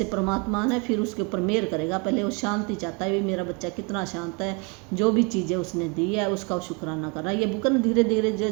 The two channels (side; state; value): left; quieter; 31.9 dB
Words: परमात्मा ने फिर उसके ऊपर मेहर करेगा। पहले वो शांति चाहता है, भी मेरा बच्चा कितना शांत है, जो भी चीज़ें उसने दी है उसका शुक्राना करना। ये बुक न धीरे धीरे